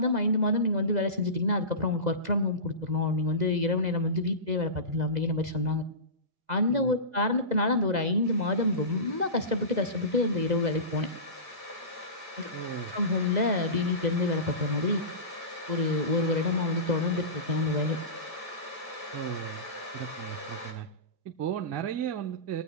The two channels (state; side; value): late; left; 2.0 ms